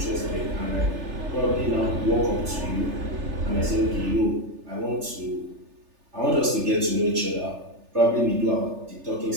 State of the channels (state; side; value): late; left; 3.4 ms